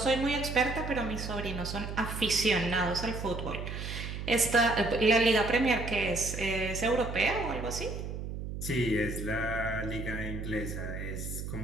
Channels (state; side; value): noise; right; hum, 6 dB below the sound